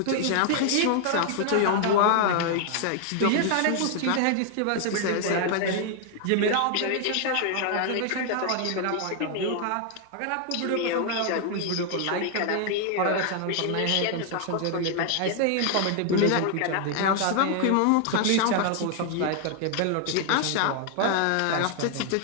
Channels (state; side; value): different; both; correlation 0.00